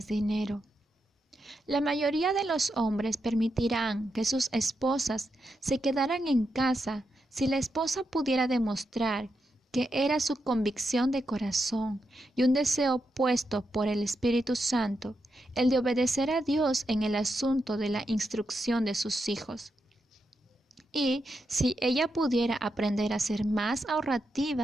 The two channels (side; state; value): both; normal; correlation 0.85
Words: dinero. La mayoría de los hombres permitirán que sus esposas se quedaran en casa si la esposa pudiera demostrar que era su convicción de corazón y un deseo puesto por el Espíritu Santo, el de obedecer a Dios en el asunto de la instrucción de sus hijos. Y si ella pudiera aprender a ser más